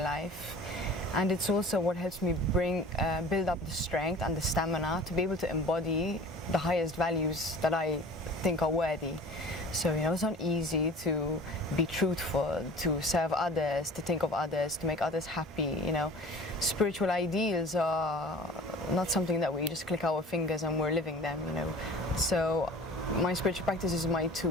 life. And it's also what helps me build up the strength and the stamina to be able to embody the highest values that I think are worthy. So, you know, it's not easy to be truthful, to serve others, to think of others, to make others happy. You know, spiritual ideals are not something that we just click our fingers and we're living them, you know. So my spiritual practice is my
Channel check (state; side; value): normal; both; correlation 0.43